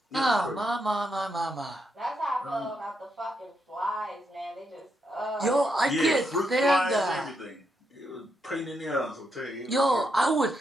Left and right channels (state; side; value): normal; both; correlation 0.81